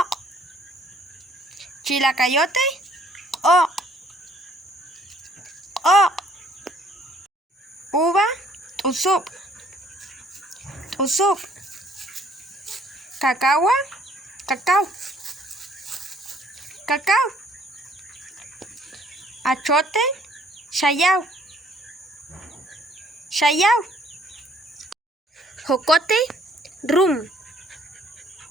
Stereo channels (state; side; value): normal; both; correlation 0.61